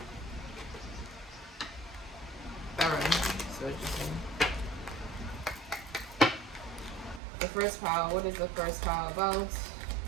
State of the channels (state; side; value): drops out; left; at 7.2 s